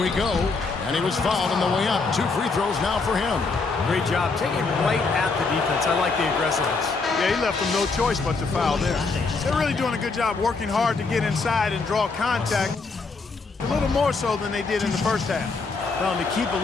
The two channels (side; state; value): right; quieter; 4.2 dB